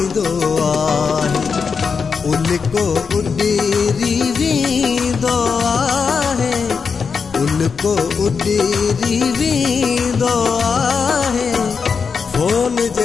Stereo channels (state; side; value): quieter; right; 5.6 dB